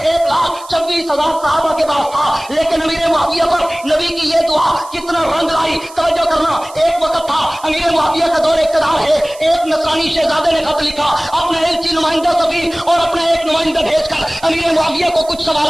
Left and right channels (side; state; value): right; noise; hiss, 20 dB below the sound